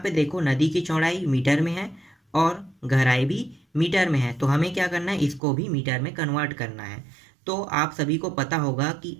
देखो नदी की चौड़ाई मीटर में है और गहराई भी मीटर में है, तो हमें क्या करना है? इसको भी मीटर में कन्वर्ट करना है। तो आप सभी को पता होगा कि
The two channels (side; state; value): left; drops out; at 5.4 s